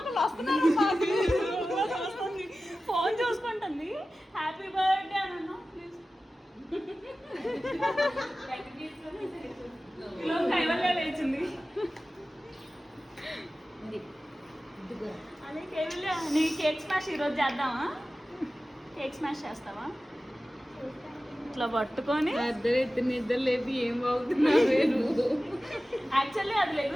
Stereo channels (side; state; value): both; normal; correlation 0.95